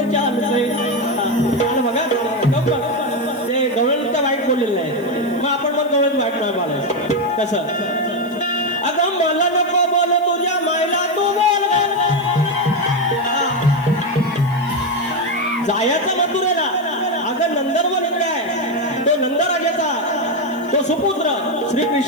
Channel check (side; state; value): left; noise; hiss, 26 dB below the sound